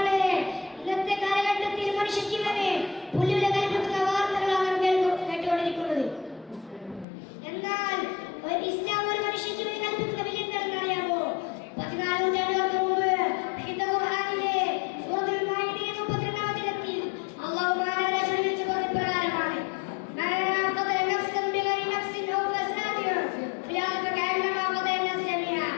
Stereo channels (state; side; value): drops out; right; at 7.1 s